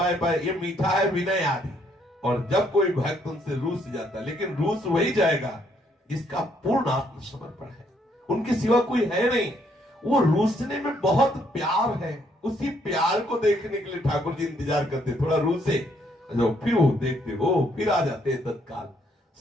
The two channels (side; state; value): both; normal; correlation 0.70